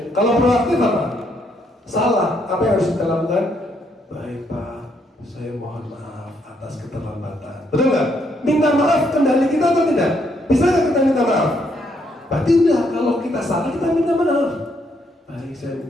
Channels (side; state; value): both; normal; correlation 0.73